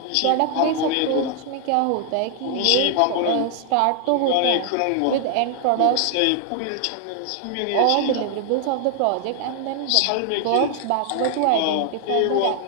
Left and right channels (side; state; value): both; different; correlation 0.00